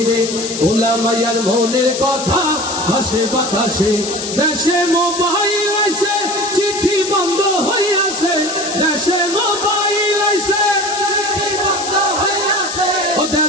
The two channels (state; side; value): noise; left; hiss, 6 dB below the sound